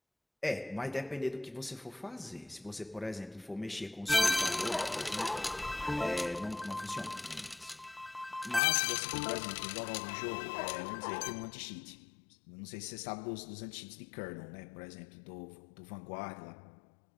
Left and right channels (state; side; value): drops out; right; at 8.6 s